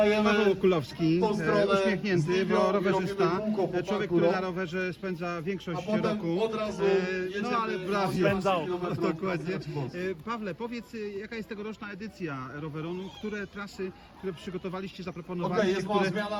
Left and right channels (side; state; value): both; identical; correlation 1.00